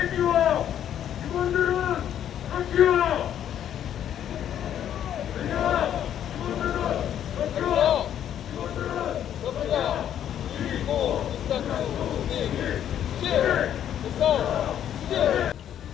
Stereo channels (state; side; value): quieter; right; 10.2 dB